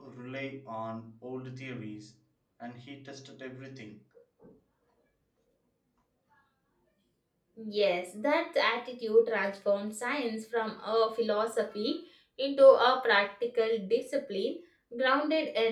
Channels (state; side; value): identical; both; correlation 1.00